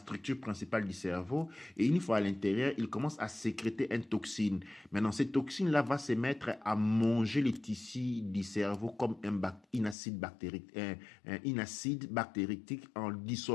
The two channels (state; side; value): drops out; right; at 10.0 s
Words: principale du cerveau, et une fois à l'intérieur, il commence à sécréter une toxine. Maintenant, cette toxine-là va se mettre à manger les tissus du cerveau comme un acide bactéritique en